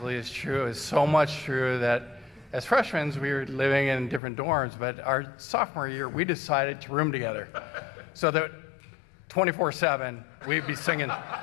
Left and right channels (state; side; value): drops out; right; at 4.2 s